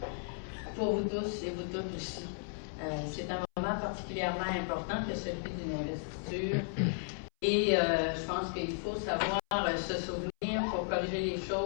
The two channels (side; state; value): right; silent; 55 dB below the other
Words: Pour vous tous et vous toutes aussi. C'est un moment particulièrement important que celui d'une investiture. Et je pense qu'il faut savoir se souvenir pour corriger les